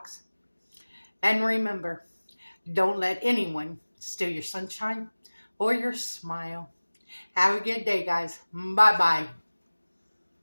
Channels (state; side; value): inverted; both; correlation -1.00